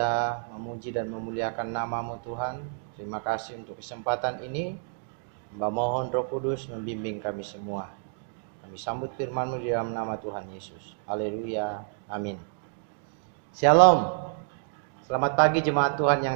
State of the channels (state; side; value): silent; left; digital silence